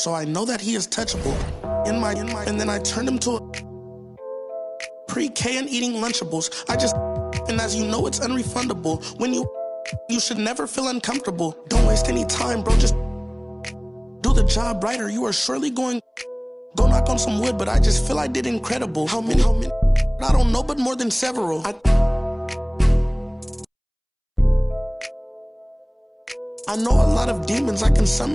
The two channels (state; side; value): identical; both; correlation 1.00